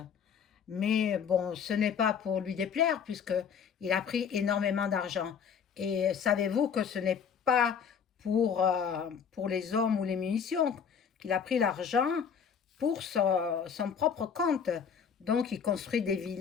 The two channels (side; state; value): right; quieter; 7.1 dB